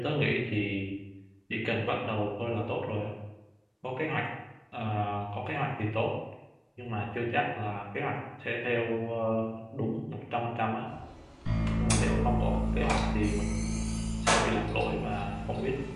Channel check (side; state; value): both; identical; correlation 1.00